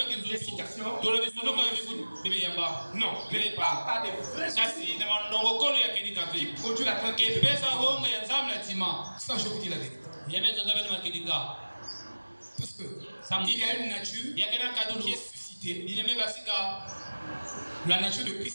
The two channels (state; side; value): inverted; both; correlation -1.00